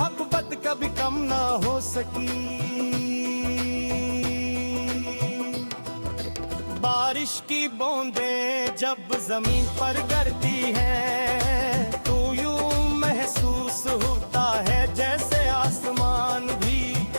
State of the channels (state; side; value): inverted; both; correlation -1.00